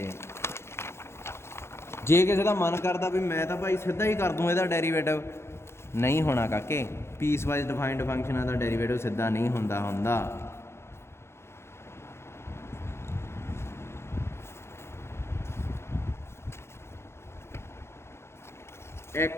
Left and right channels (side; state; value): right; late; 0.12 ms